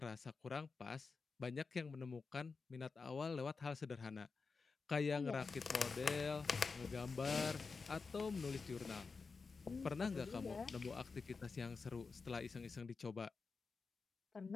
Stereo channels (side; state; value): right; quieter; 4.6 dB